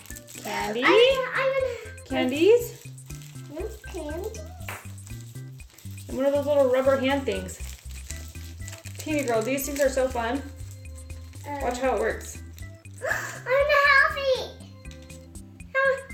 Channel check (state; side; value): identical; both; correlation 1.00